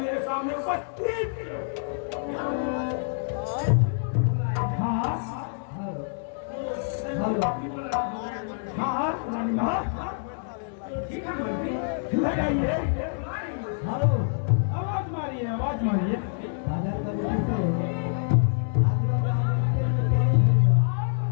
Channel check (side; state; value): right; silent; digital silence